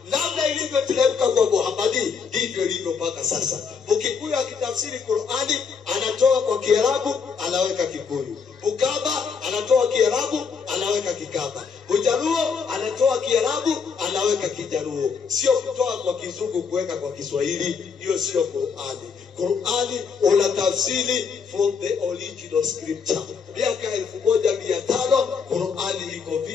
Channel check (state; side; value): quieter; right; 5.8 dB